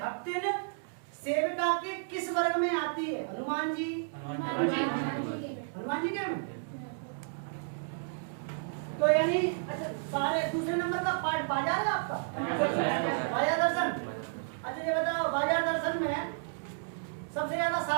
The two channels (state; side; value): silent; left; digital silence